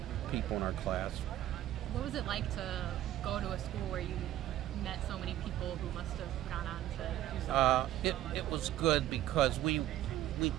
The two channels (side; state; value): left; quieter; 13.2 dB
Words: people in our class. What was it like to go to a school where you met so many people who must have gone on to do something? It was good because we